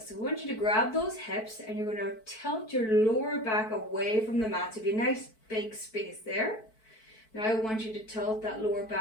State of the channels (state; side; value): late; right; 4.6 ms